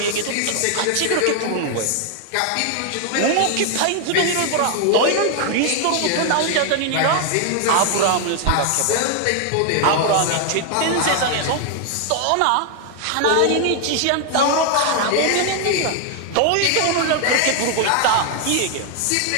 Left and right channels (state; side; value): different; both; correlation 0.00